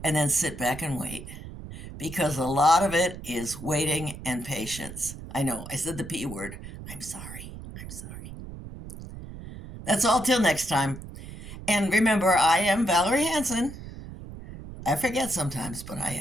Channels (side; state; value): right; noise; rumble, 12 dB below the sound